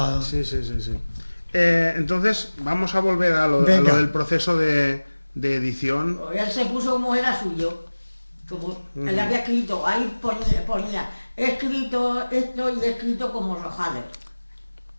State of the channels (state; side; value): inverted; both; correlation -1.00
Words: Sí. Entonces, vamos a volver a lo Venga. del proceso de edición. Él se puso como era suyo, como él había escrito, ahí ponía, he escrito esto y he escrito como Rojales.